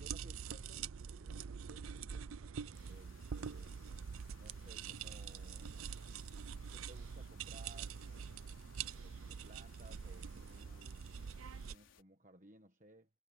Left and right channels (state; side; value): quieter; left; 6.1 dB